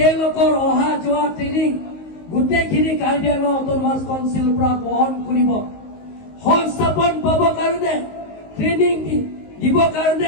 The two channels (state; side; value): late; right; 19 ms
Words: অহা যোৱা ট্ৰেইনিং গোটেইখিনি কাৰ্বি আংলং অট'নমাছ কাউন্সিলৰ পৰা বহন কৰিব সংস্থাপন পাব কাৰণে ট্ৰেইনিং দিবৰ